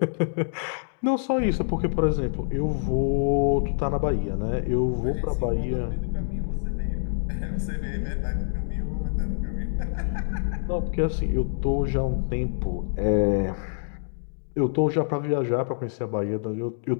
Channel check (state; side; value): silent; right; digital silence